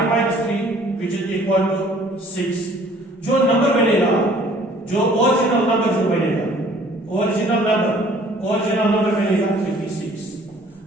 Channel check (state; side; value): normal; both; correlation 0.55